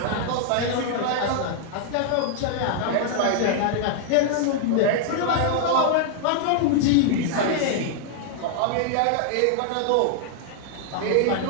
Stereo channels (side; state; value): both; different; correlation 0.00